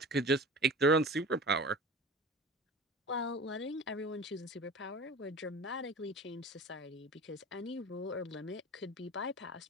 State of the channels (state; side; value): normal; both; correlation 0.37